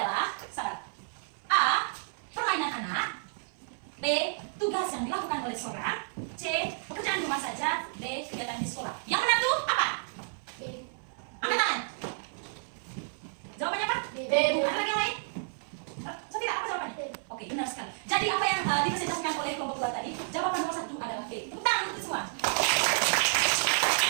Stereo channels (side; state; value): left; silent; 57 dB below the other